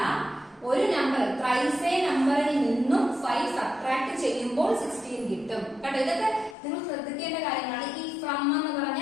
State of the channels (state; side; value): drops out; right; at 6.6 s